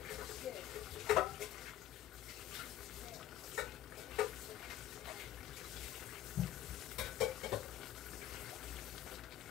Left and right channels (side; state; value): right; quieter; 12.5 dB